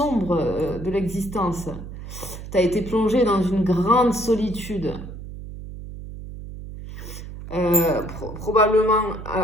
de l'existence. Tu as été plongé dans une grande solitude. Probablement,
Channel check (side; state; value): right; noise; hum, 11 dB below the sound